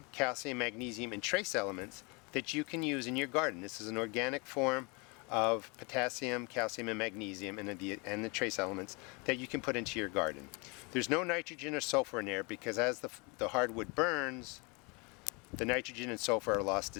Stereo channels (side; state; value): right; quieter; 29.7 dB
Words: calcium, magnesium, and trace elements that you can use in your garden. This is an organic form of potassium, calcium, and magnesium and the trace elements that you can put into your garden. There's no nitrogen or sulfur in there because as the hardwood burns, the nitrogen and sulfur are lost